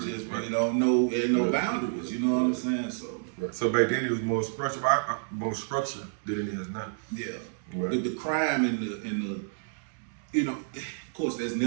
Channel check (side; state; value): left; silent; digital silence